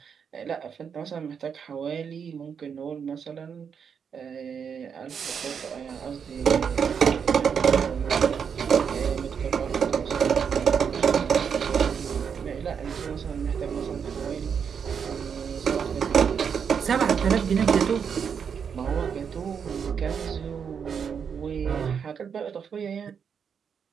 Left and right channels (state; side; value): quieter; left; 6.9 dB